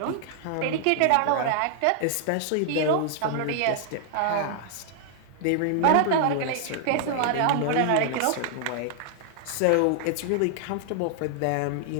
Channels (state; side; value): different; both; correlation 0.00